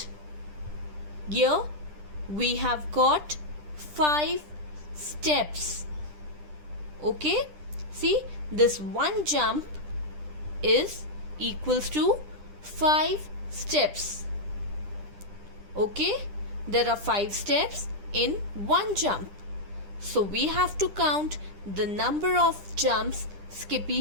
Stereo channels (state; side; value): late; left; 10 ms